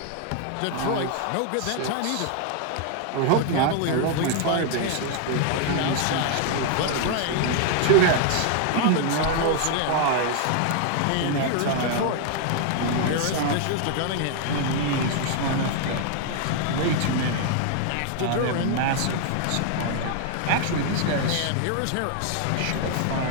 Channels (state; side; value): different; both; correlation 0.00